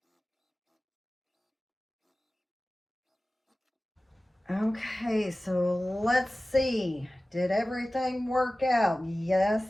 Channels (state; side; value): normal; both; correlation 0.97